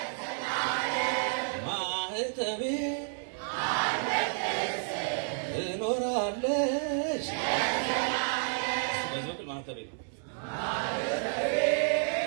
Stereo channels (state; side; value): silent; left; 57 dB below the other